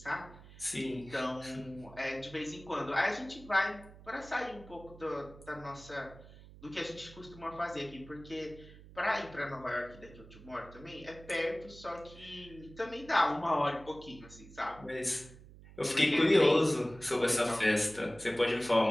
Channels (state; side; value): noise; right; hum, 19 dB below the sound